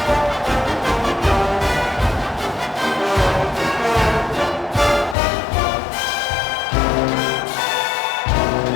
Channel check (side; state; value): right; drops out; at 5.2 s